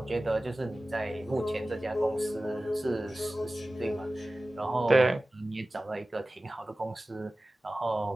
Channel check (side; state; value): both; normal; correlation 0.96